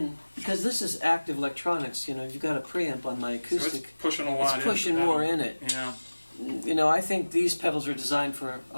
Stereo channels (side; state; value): both; inverted; correlation -1.00